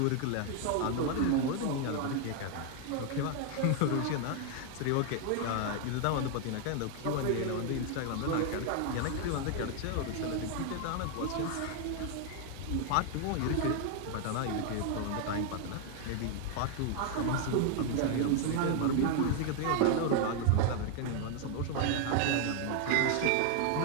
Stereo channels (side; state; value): both; different; correlation 0.00